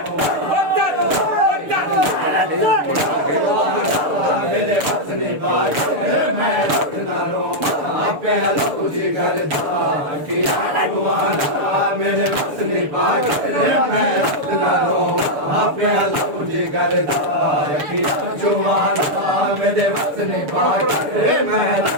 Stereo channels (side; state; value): left; late; 6.9 ms